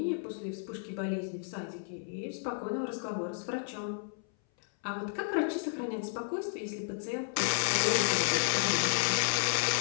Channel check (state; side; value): silent; right; 56 dB below the other